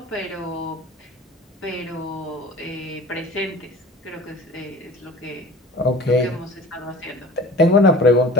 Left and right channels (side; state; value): both; normal; correlation 0.41